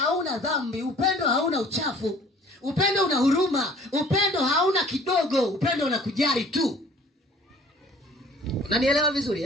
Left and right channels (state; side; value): normal; both; correlation 0.51